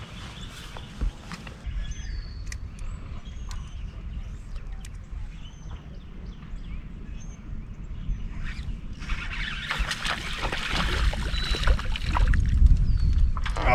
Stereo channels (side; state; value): both; identical; correlation 1.00